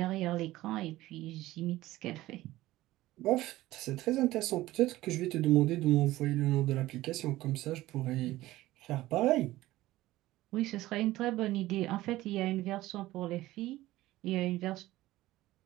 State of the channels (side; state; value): left; quieter; 16.7 dB